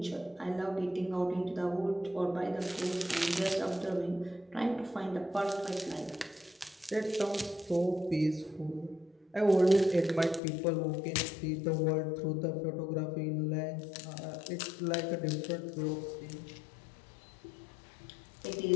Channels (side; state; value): right; drops out; at 10.4 s